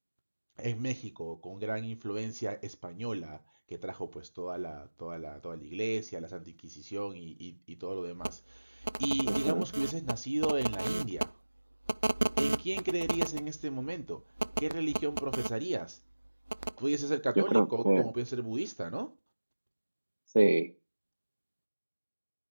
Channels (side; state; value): both; inverted; correlation -1.00